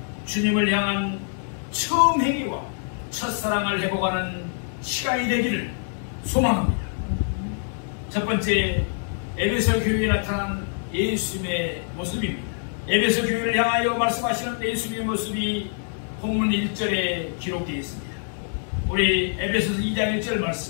주님을 향한 처음 행위와 첫사랑을 회복하는 시간이 되기를 소망합니다. 첫 번째, 에베소 교회에 나타난 예수님의 모습입니다. 에베소 교회를 향하여 말씀하시는 예수님의 모습이 본문 1절에 기록되어 있습니다. 우리 에베소서 2장 1절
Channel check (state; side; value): silent; right; digital silence